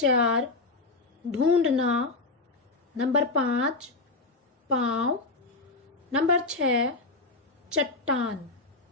ढूंढना, नंबर 5 पाँव, नंबर 6 चट्टान,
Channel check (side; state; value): right; quieter; 3.4 dB